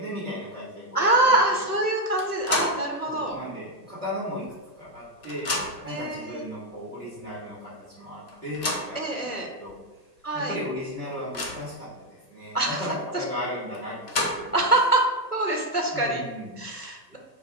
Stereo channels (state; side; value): late; right; 1.3 ms